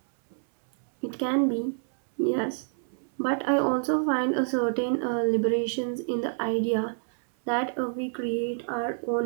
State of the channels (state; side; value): silent; left; 60 dB below the other